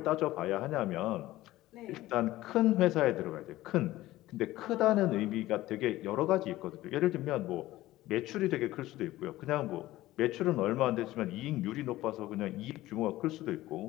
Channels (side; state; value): right; quieter; 16.4 dB